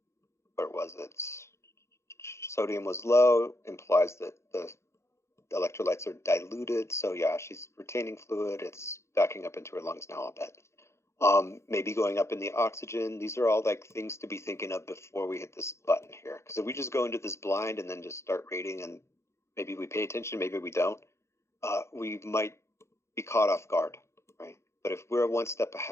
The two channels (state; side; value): late; right; 0.13 ms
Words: Where was it? Sodium was low, implies that the electrolytes are diluted. So yeah, she's retaining fluid. It's backing up into her lungs now, I'll bet. Maybe going up in the oxygen. These are all things to be thinking of before we hit this button here. Because if we just go into this blind and then just start rating, and maybe we pay attention, maybe we don't, we might be caught off guard, right? But if we're one step